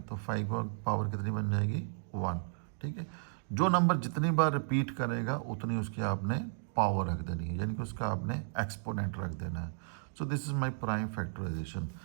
तो 5 की पावर कितनी बन जाएगी 1। ठीक है, जो नंबर जितनी बार रिपीट करेगा उतनी उसकी आपने पावर रख देनी है, यानी कि उसका आपने एक्सपोनेंट रख देना है। So this is my prime factorization.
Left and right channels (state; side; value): silent; left; digital silence